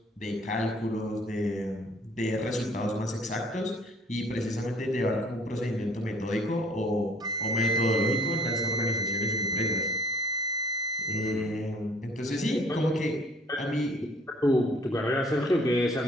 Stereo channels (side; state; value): both; normal; correlation 0.56